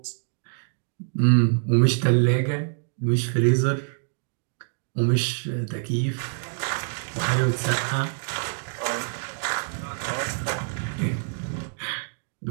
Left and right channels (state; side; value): silent; left; digital silence